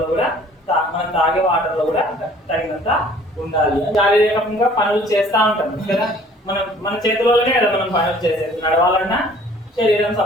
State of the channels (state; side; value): normal; both; correlation 0.54